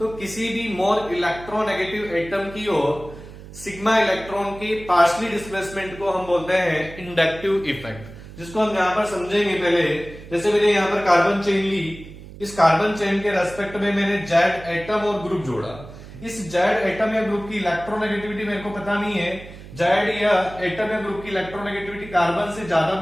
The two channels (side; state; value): right; noise; hum, 16 dB below the sound